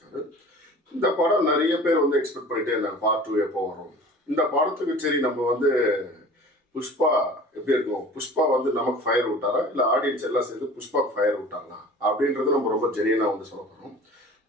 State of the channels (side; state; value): both; normal; correlation 0.43